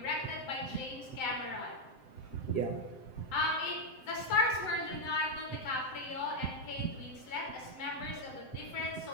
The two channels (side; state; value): right; late; 7.7 ms